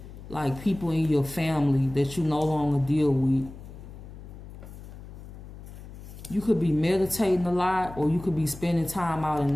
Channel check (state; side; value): noise; left; hum, 14 dB below the sound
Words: like people in your family that you no longer deal with. You could be meditating a lot, or you could be spending time out in